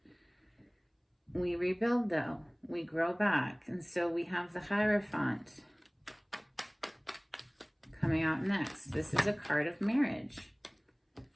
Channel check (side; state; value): both; identical; correlation 1.00